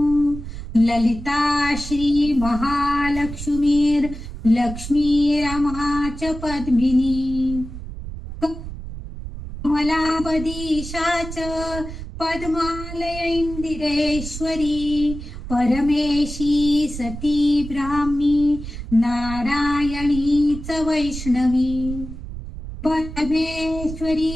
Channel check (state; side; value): noise; right; rumble, 10 dB below the sound